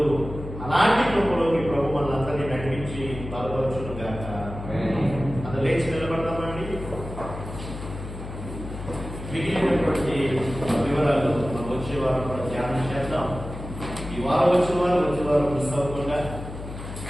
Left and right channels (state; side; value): noise; left; hum, 10 dB below the sound